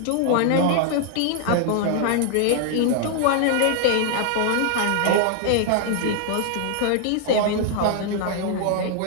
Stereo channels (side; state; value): both; different; correlation 0.00